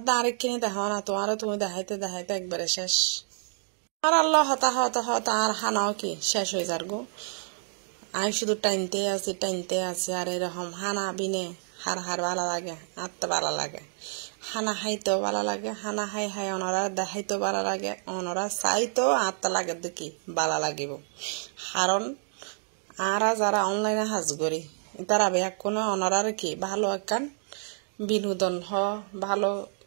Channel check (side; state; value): left; silent; digital silence